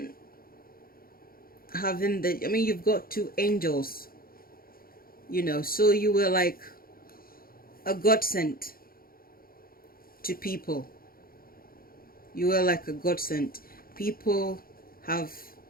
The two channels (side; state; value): right; late; 0.43 ms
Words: having you've got two angels, so you were like a godsend to people. You were like a godsend. People